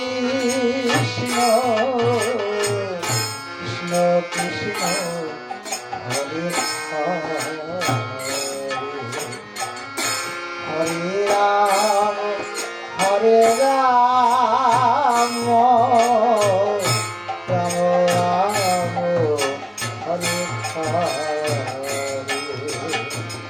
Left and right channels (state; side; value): identical; both; correlation 1.00